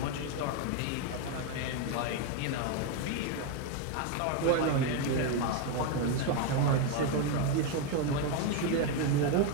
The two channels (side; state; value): both; different; correlation 0.02